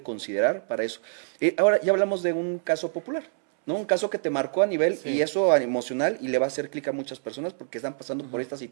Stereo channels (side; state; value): left; silent; 61 dB below the other